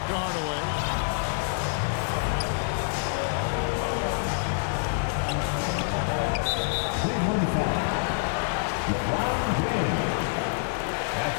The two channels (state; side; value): silent; right; digital silence